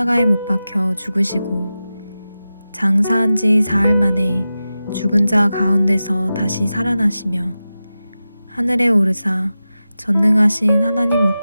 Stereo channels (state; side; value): inverted; both; correlation -0.93